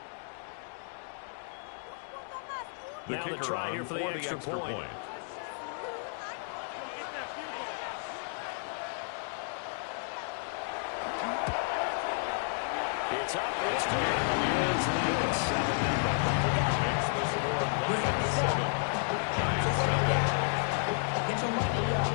Now the try here for the extra point. It's up, it's good. Lions lead at 7-0. Makes the score Lions 7. Giants nothing. Get your money up.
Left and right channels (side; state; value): right; silent; digital silence